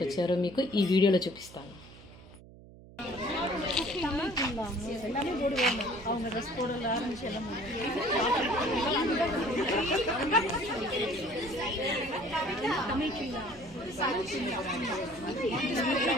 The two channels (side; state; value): right; noise; hum, 20 dB below the sound